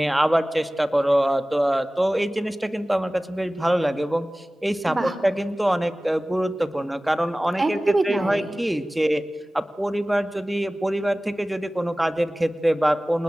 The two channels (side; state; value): both; normal; correlation 0.97